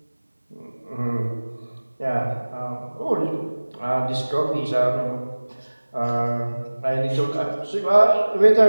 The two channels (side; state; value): both; inverted; correlation -1.00